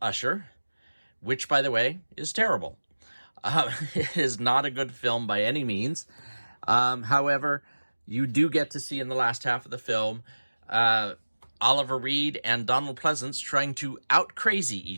Usher, which, by the way, is terrible. It is not a good film by any means. However, you do get to see in the last half of the film Oliver Reed and Donald Pleasance trying to out-crazy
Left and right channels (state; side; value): inverted; both; correlation -1.00